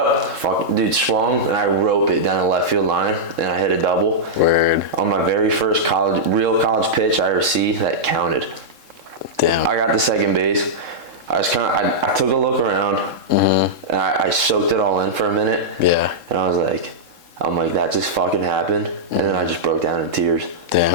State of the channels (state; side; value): late; left; 3.7 ms